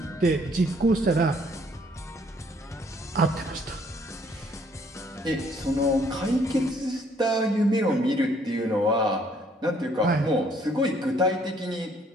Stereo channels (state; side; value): normal; both; correlation 0.64